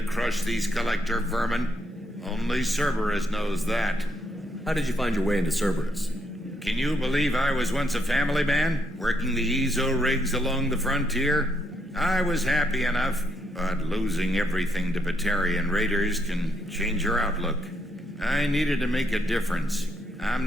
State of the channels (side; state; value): both; normal; correlation 0.76